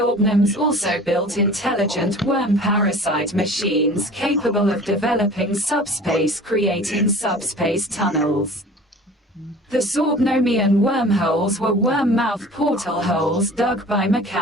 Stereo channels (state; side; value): normal; both; correlation 0.43